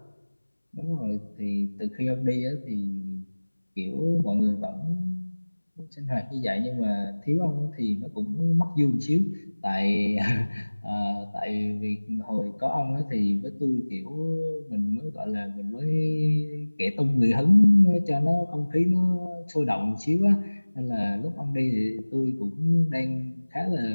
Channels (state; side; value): inverted; both; correlation -1.00